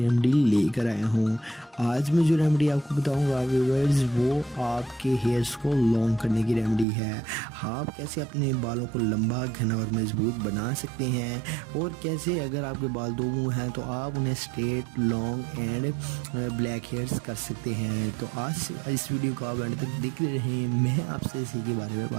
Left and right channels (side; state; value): left; drops out; at 6.9 s